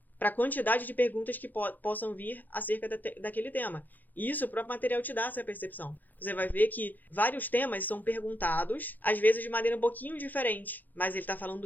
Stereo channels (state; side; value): late; right; 0.084 ms